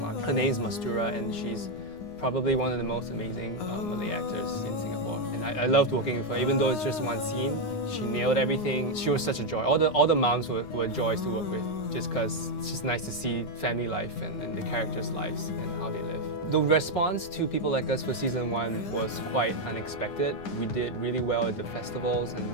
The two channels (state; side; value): late; right; 9.7 ms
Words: Her name is Mastura, and she's probably one of the most amazing Malay actors in Singapore. And I loved working with her, even though it's just one scene. She nailed everything. She was such a joy. All the moms were joys to work with, just because it's just nice to see family life and the characters' lives and how they live. The response to People Like Us for season 1 was quite unexpected. We did really well at the festivals, and